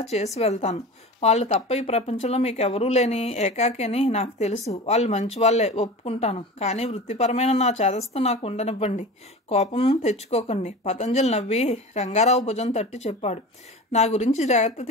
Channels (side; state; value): both; normal; correlation 0.33